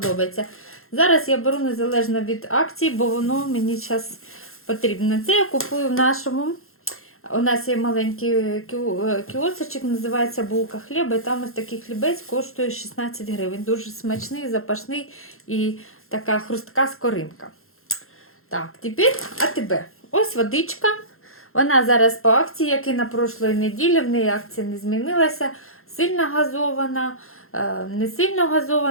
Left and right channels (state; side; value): late; right; 0.62 ms